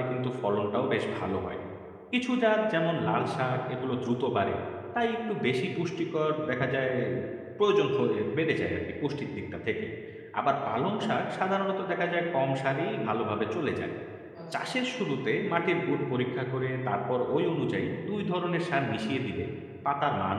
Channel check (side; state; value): both; identical; correlation 1.00